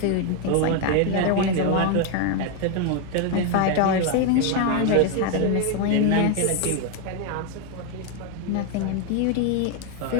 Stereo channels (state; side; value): different; both; correlation 0.01